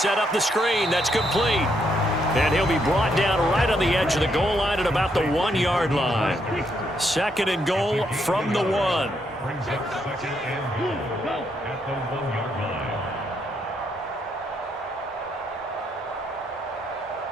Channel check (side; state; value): both; normal; correlation 0.76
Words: up the screen. That's complete. And he'll be brought down right on the edge of the goal line at about the 1-yard line. 2nd and goal from the 1. Brings up 2nd and goal at the 1-yard line.